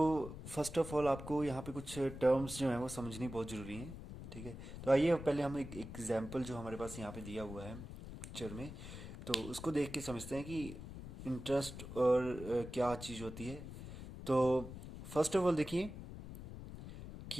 फर्स्ट ऑफ ऑल आपको यहाँ पे कुछ टर्म्स जो हैं वो समझनी बहुत ज़रूरी हैं। ठीक है, तो आइए पहले हम एक एग्जांपल जो हमारे पास यहाँ पे दिया हुआ है पिक्चर में, तो उसको देख के समझते हैं कि इंटरेस्ट और क्या चीज़ होती है। तो फर्स्ट ऑफ ऑल देखिए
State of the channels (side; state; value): left; noise; rumble, 11 dB below the sound